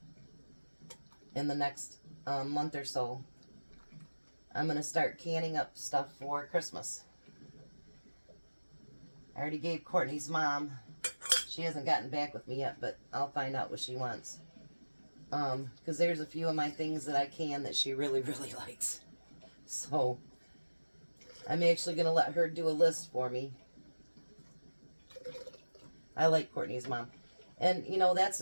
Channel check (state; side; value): inverted; both; correlation -1.00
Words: in the next month or so. I'm going to start canning up stuff for Christmas. I already gave Courtney's mom. She hasn't gotten back with me yet, but I'll find out what she wants. Because there's a few of my things that I can that she really, really likes. So, I'm actually going to let her do a list for me. I like Courtney's mom. And, you know, that's